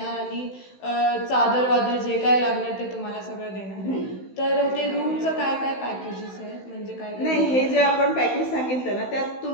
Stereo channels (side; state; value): right; late; 16 ms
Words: आणि चादर वादर जे काय लागणार ते तुम्हाला सगळं देणार. तर ते रूमचं काय पॅकेजेस आहे म्हणजे काय? नाही, हे जे आपण पॅकेज सांगितलं ना त्यात